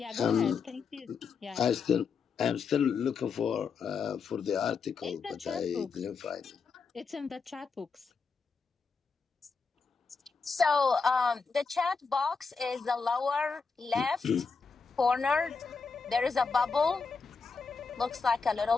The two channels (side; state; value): right; quieter; 5.1 dB